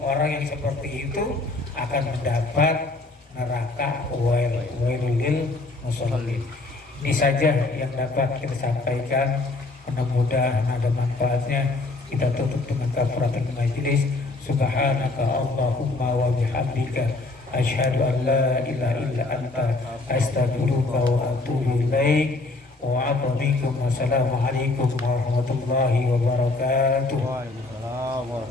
orang yang seperti itu akan mendapat neraka, wailul musallin. Ini saja yang dapat kita sampaikan, mudah-mudahan ada manfaatnya. Kita tutup dengan kafaratul majlis. Subhanaka Allahumma wa bihamdika, asyhadu an la ilaha illa anta, astaghfiruka wa atubu ilaik. Wassalamualaikum warahmatullahi wabarakatuh. Waalaikumsalam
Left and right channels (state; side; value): quieter; right; 3.3 dB